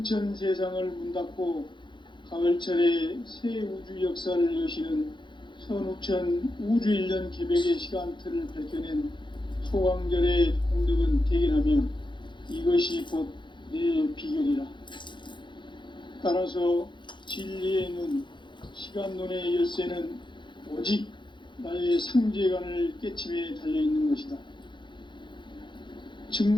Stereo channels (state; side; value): late; right; 0.23 ms